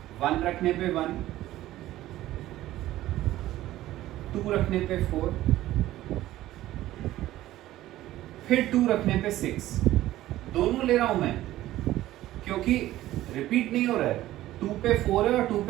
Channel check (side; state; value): left; quieter; 15.0 dB